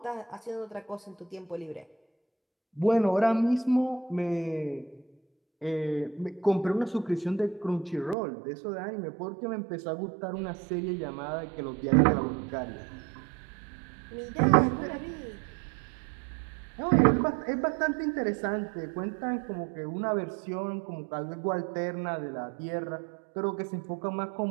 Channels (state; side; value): drops out; left; at 8.2 s